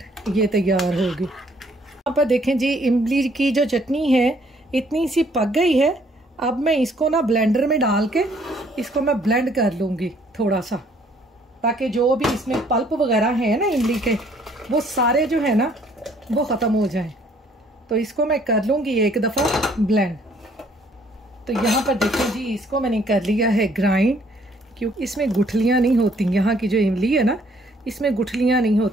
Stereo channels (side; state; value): both; normal; correlation 0.63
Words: ये तैयार होगी। यहाँ पर देखें जी, इमली की जो चटनी है इतनी सी पक गई है। अब मैं इसको ना ब्लेंडर में डाल के इसको मैं ब्लेंड कर लूँगी थोड़ा सा, ताकि जो भी इसमें पल्प वगैरह है ना इमली के, वो सारे जो है ना वो ख़त्म हो जाएं। तो इसको मैं कर लूँगी एक दफ़ा ब्लेंड। तो यहाँ पर देखें जी, इसको मैंने कर लिया है ग्राइंड, क्योंकि इसमें गुठलियाँ नहीं होती। यहाँ की जो इमली है ना इसमें गुठलियाँ नहीं